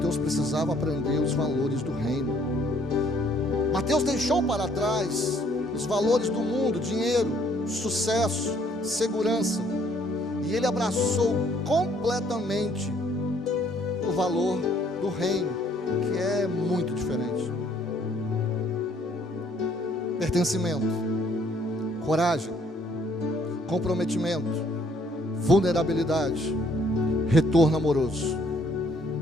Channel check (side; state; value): both; normal; correlation 0.64